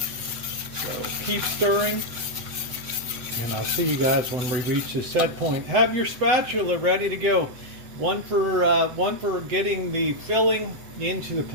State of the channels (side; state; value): left; late; 8.0 ms